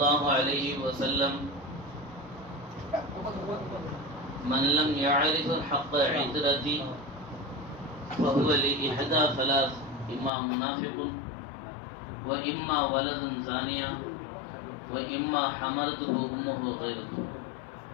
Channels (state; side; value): drops out; right; at 10.3 s